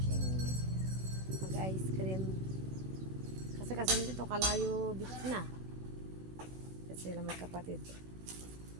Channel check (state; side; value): late; left; 16 ms